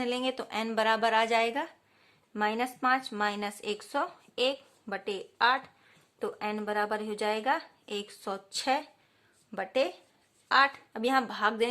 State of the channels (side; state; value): both; identical; correlation 1.00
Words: लेंगे तो n बराबर आ जाएगा -5 माइनस 101 बटे 8, तो n बराबर हो जाएगा 106 बटे 8। अब यहाँ भाग